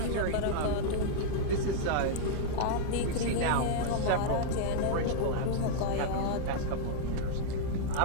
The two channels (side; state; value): both; different; correlation -0.01